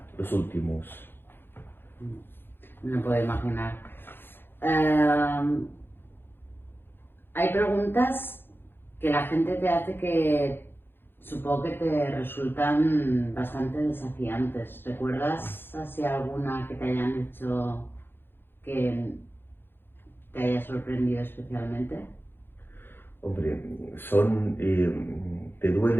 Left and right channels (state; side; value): late; right; 0.10 ms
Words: los últimos. No me puedo imaginar. Hay preguntas que la gente te hace que supongo que te resultan bastante desafiantes. ¿Recuerdas así alguna que te hayan hecho que te haya sorprendido especialmente? Hombre, te